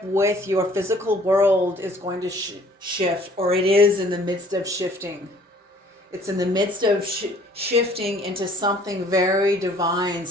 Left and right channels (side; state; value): both; normal; correlation 0.56